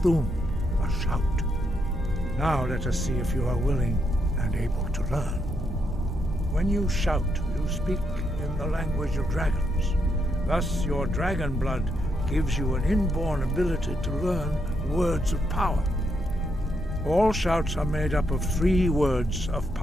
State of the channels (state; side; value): normal; both; correlation 0.79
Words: a shout. Now let us see if you are willing and able to learn. When you shout, you speak in the language of dragons. Thus, your dragon blood gives you an inborn ability to learn words of power. All shouts are made up of 3 words of